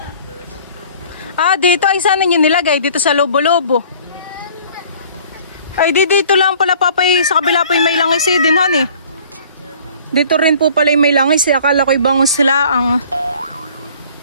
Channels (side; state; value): both; inverted; correlation -0.52